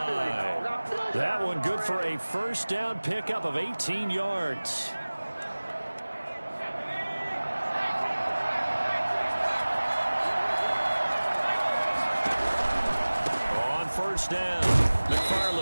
That one good for a 1st down pickup of 18 yards. On 1st down.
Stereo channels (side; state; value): both; inverted; correlation -1.00